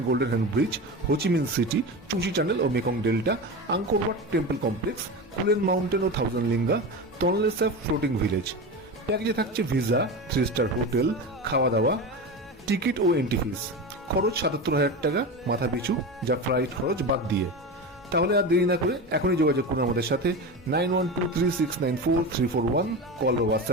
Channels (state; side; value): normal; both; correlation 0.24